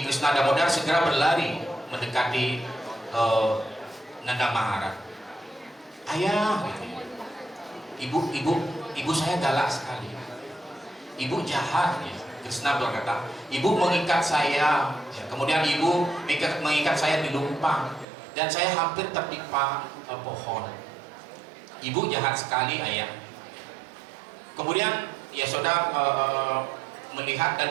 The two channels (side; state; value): left; drops out; at 18.1 s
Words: Krishna Damodar segera berlari mendekati Nanda Maharaj. Ayah, ibu saya galak sekali. Ibu jahat, ya. Krishna berkata, ibu mengikat saya, ya. Kemudian ibu mengikat saya di lumpang, dan saya hampir tertimpa pohon. Ibu jahat sekali, ayah. Kemudian Yasoda melihat dan